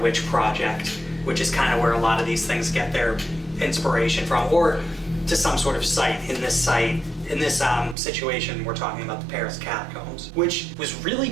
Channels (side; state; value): left; drops out; at 8.0 s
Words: Project, which is kind of where a lot of these things get their inspiration from, or to some sort of site. In this situation, we're talking about the Paris catacombs, which was really